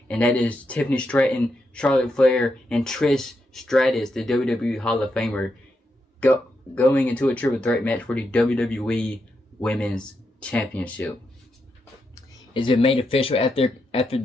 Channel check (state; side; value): normal; both; correlation 0.84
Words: and that is Tiffany Stratton, Charlotte Flair, and Trish Stratus, the WWE Hall of Famer, going into a triple threat match for the WWE Women's Championship. It's been made official after